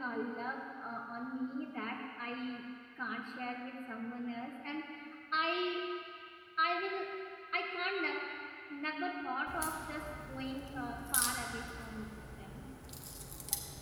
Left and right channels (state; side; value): identical; both; correlation 1.00